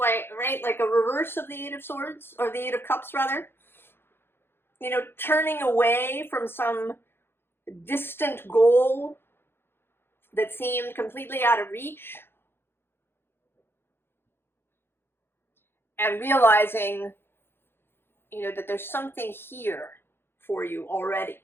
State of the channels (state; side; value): late; right; 0.11 ms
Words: right, like a reverse of the 8 of Swords, or the 8 of Cups rather. You know, turning away from some distant goal that seemed completely out of reach. And realizing, you know, that there's something here for you already.